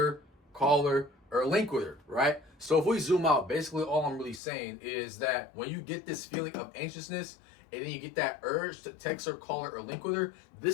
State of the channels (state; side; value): drops out; right; at 4.4 s